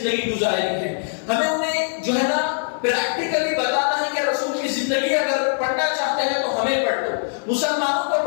گزاری ہے، ہمیں انہیں جو ہے نا پریکٹیکلی بتانا ہے کہ رسول کی زندگی اگر پڑھنا چاہتے ہیں تو ہمیں پڑھ لو، مسلمانوں کو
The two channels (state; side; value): silent; right; digital silence